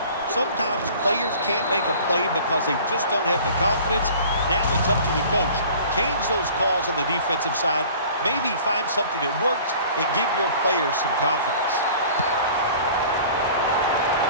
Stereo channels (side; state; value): both; inverted; correlation -0.46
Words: sometimes players can't make a play because they just don't have the confidence. Now it's up to the coach. Change those calls on the defensive side. Maybe find something that works and give your players some confidence.